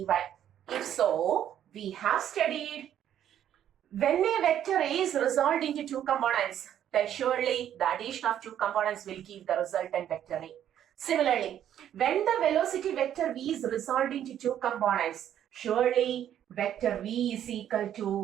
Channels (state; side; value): quieter; left; 10.5 dB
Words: If so, we have studied when a vector A is resolved into two components, then surely the addition of two components will give the resultant vector A. Similarly, when the velocity vector V is resolved into two components, surely vector V is equal